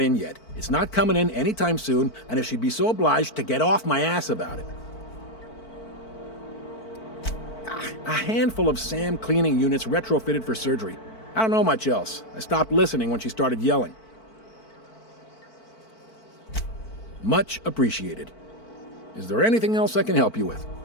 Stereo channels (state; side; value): late; right; 4.5 ms